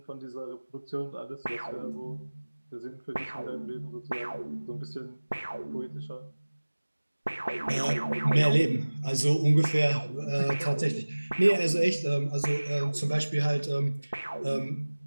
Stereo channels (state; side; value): inverted; both; correlation -1.00